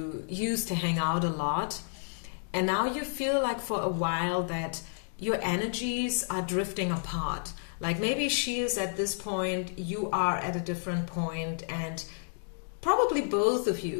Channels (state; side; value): silent; right; digital silence